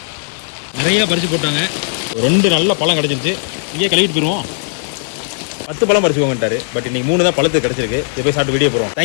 நிறைய பறிச்சு போட்டாங்க. ஒரு 2 நல்ல பழம் கிடைச்சிருச்சு. இங்கே கழுவிட்டு போயிருவோம். 10 பழம் பறிச்சுக்கோங்கட்டாரு. பட் இன்னைக்கு 3 தான் பழத்துக்கு கிடைச்சிருக்கு. இதை போய் சாப்பிட்டு வீடியோ போறோம்.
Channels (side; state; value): right; silent; digital silence